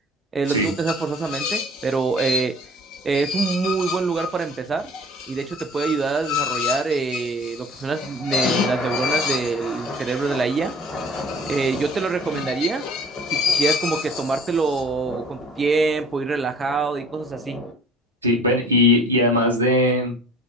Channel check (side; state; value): both; normal; correlation 0.48